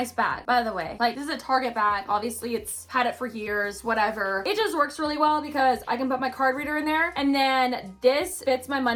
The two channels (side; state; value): both; identical; correlation 1.00